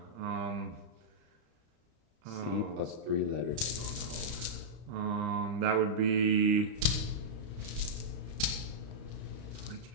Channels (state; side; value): late; left; 35 ms